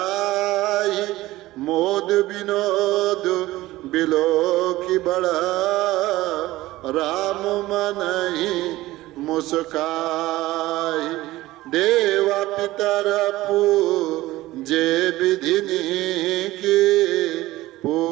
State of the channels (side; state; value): left; quieter; 17.4 dB